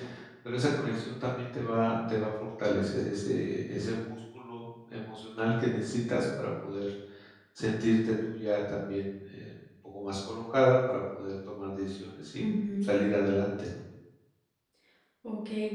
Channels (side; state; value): both; identical; correlation 1.00